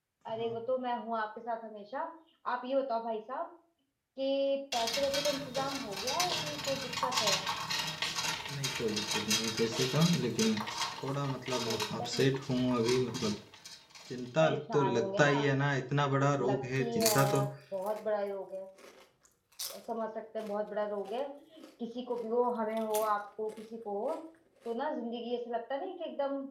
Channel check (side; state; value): both; identical; correlation 1.00